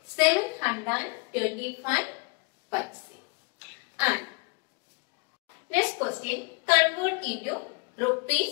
725 paise. And next question, convert into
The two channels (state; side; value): quieter; right; 33.0 dB